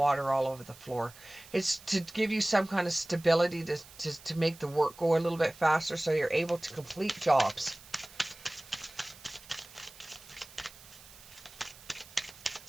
all over the floor. It's to give you some kind of stability to make the work go a little bit faster so you're able to complete jobs.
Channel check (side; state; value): right; noise; hiss, 20 dB below the sound